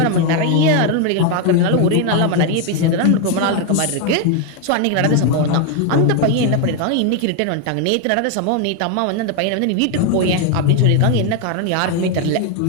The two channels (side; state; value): both; different; correlation 0.01